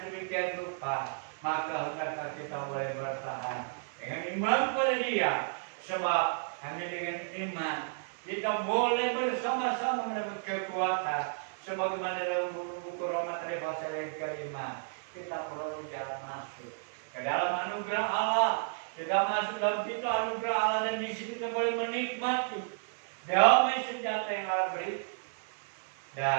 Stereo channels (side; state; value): left; silent; digital silence